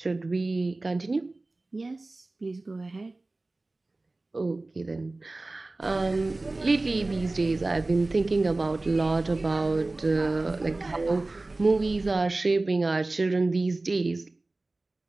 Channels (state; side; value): quieter; left; 3.1 dB